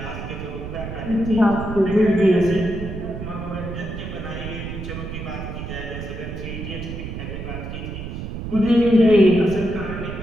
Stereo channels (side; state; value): right; noise; rumble, 7 dB below the sound